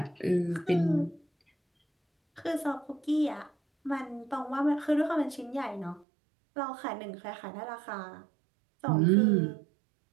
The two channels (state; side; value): drops out; left; at 6.1 s